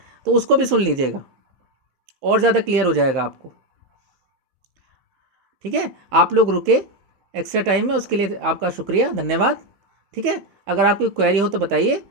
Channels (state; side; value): late; left; 16 ms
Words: तो उसको भी सुन लीजिएगा, और ज़्यादा क्लियर हो जाएगा आपको, ठीक है। आप लोग रुके एक्स्ट्रा टाइम में, उसके लिए आपका शुक्रिया, धन्यवाद, ठीक है। अगर आपकी क्वेरी हो तो बताइए,